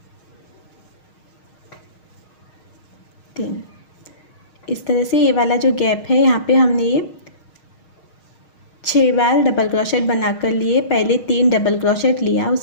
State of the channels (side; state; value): right; late; 6.4 ms